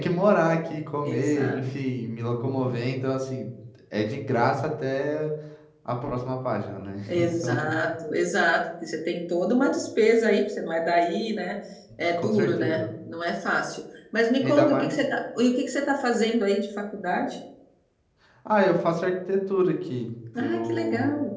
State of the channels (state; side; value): identical; both; correlation 1.00